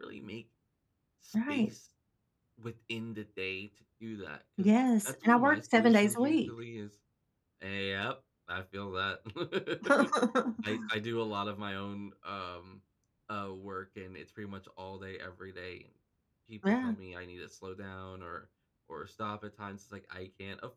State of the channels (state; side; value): identical; both; correlation 1.00